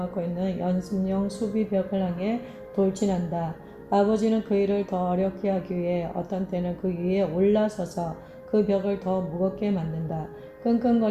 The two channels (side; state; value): both; identical; correlation 1.00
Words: 있는 연습용 수비벽을 향해 돌진한다. 아버지는 그 일을 더 어렵게 하기 위해 어떤 때는 그 위에 올라서서 그 벽을 더 무겁게 만든다.